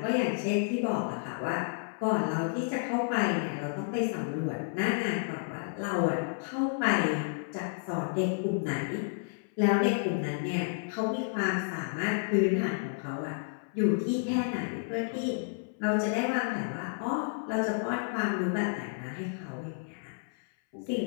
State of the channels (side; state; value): right; silent; 57 dB below the other